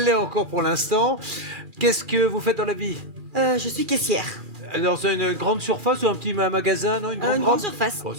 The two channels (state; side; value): late; left; 2.4 ms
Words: l'est encore pour l'instant. Qu'est-ce que vous faites dans la vie? Je suis caissière. Dans une grande surface ou un petit magasin, non? Une grande surface. Bon,